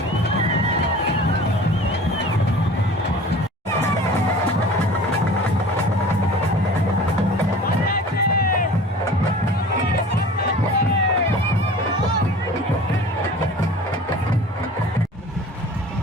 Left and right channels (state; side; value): normal; both; correlation 0.43